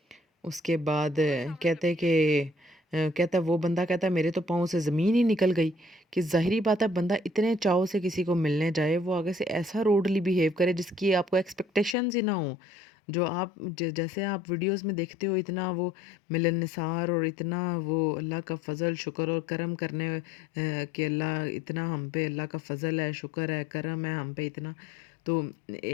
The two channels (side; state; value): right; drops out; at 12.0 s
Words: उसके बाद कहते कि कहता वो बंदा कहता है मेरे तो पाँव से ज़मीन ही निकल गई, कि ज़ाहिरी बात है बंदा इतने चाव से किसी को मिलने जाए वो आगे से ऐसा रूडली बिहेव करे जिसकी आपको एक्सपेक्टेशंस ही ना हो। जो आप जैसे आप वीडियोस में देखते हो इतना वो मिलनसार और इतना वो अल्लाह का फ़ज़ल शुक्र और करम करने कि अल्लाह इतना हम पे अल्लाह का फ़ज़ल है, शुक्र है, करम है हम पे इतना। तो